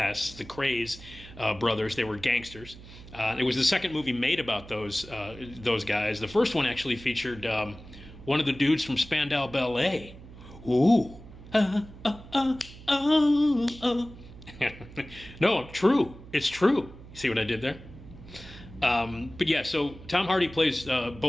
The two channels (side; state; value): right; noise; hum, 17 dB below the sound